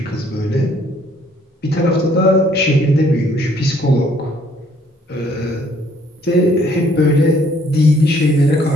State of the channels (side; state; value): both; normal; correlation 0.63